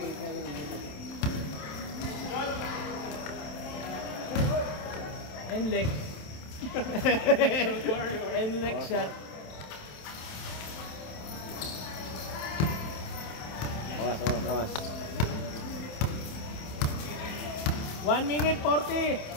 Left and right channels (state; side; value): late; right; 27 ms